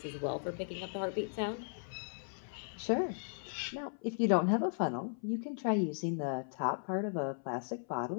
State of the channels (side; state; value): right; silent; 53 dB below the other